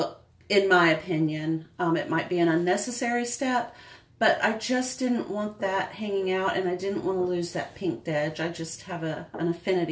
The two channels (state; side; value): identical; both; correlation 1.00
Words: in my opinion. It might be an unnecessary step, but I just didn't want that hanging out, and I didn't want to lose that pinked edge. I just have an